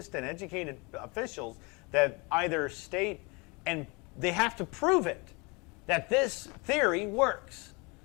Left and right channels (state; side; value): quieter; right; 28.5 dB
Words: and educated officials that either state, and they have to prove it, that this theory works.